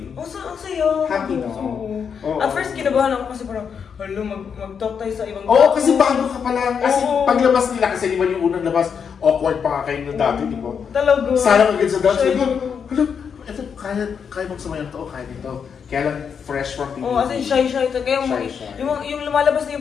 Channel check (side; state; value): right; quieter; 6.8 dB